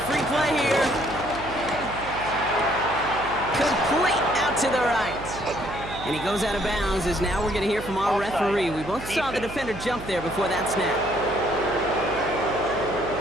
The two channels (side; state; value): right; noise; hum, 12 dB below the sound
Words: free play here. Complete out to the right. And he goes out of bounds as now we're going to hear from our referee. We both saw the defender jump there before that snap.